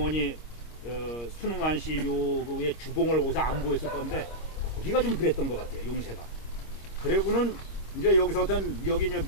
순응한 씨 묘의 주봉을 거기서 안보했을 건데 거기가 좀 그랬던 것 같아요. 용새가. 그리고는 이제 여기서 어떤 여기 이제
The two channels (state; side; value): late; right; 25 ms